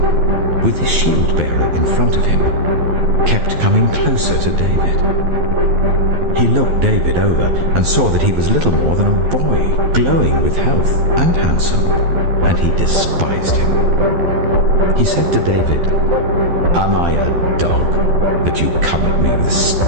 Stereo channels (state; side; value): late; left; 12 ms